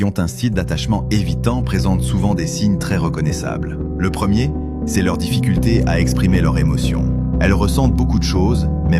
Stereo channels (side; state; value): right; noise; hum, 24 dB below the sound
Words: ont un style d'attachement évitant présentent souvent des signes très reconnaissables. Le premier, c'est leur difficulté à exprimer leurs émotions. Elles ressentent beaucoup de choses, mais